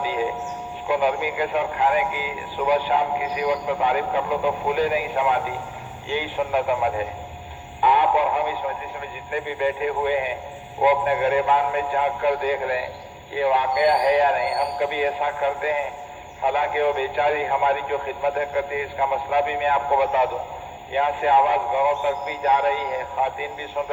ہے، اس کو نرمی کے ساتھ کھانے کی صبح شام کسی وقت تعریف کر لو تو پھولے نہیں سماتی. یہی سنت عمل ہے. آپ اور ہم اس مجلس میں جتنے بھی بیٹھے ہوئے ہیں وہ اپنے گریبان میں جھانک کر دیکھ لیں یہ واقعہ ہے یا نہیں. ہم کبھی ایسا کرتے ہیں؟ حالانکہ وہ بیچاری ہماری جو خدمتیں کرتی ہے، اس کا مسئلہ بھی میں آپ کو بتا دوں. یہاں سے آواز گھروں تک بھی جا رہی ہے، خواتین بھی سن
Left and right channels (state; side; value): identical; both; correlation 1.00